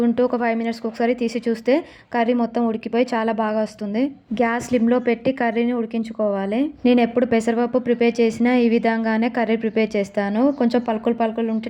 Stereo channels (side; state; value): both; identical; correlation 1.00